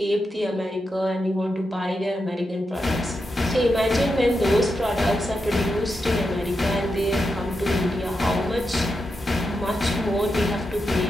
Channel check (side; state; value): both; normal; correlation 0.87